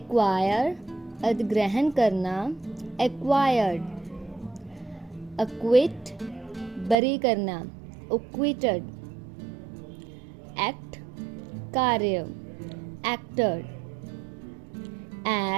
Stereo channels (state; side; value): drops out; left; at 7.0 s